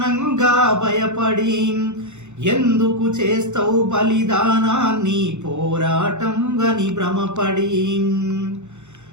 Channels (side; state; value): left; late; 0.83 ms